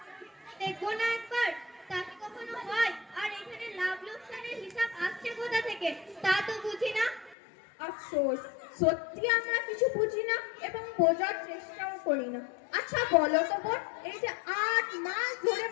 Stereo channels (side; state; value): right; drops out; at 7.4 s